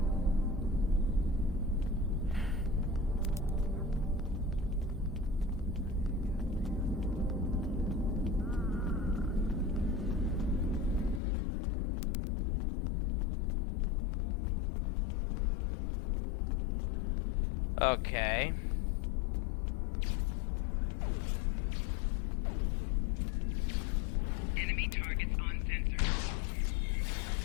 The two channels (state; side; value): drops out; right; at 11.2 s